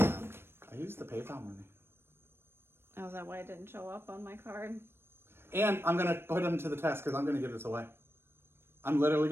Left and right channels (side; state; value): left; late; 0.12 ms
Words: I used the PayPal money. Oh, is that why it didn't show up on my card? And I'm going to put them to the test because I'm going to give this away. I'm literally